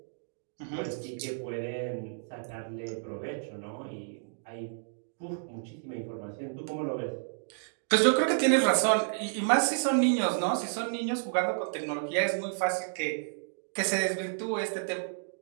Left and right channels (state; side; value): silent; left; digital silence